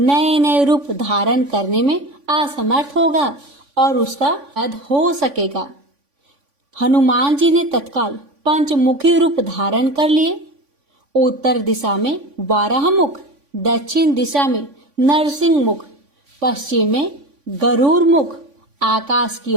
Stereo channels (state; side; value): late; left; 3.5 ms